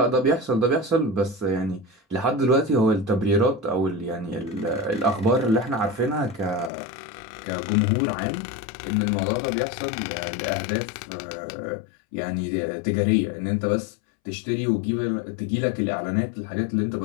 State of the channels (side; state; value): right; drops out; at 6.7 s